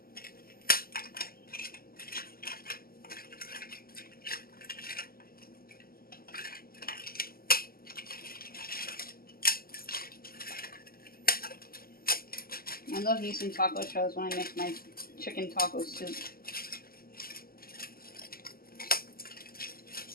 I love using taco shells when I make my chicken taco soup.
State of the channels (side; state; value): right; late; 0.43 ms